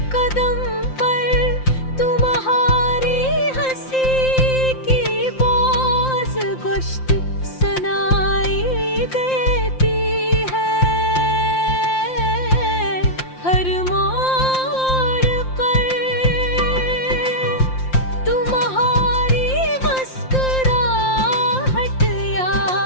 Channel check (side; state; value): right; late; 5.7 ms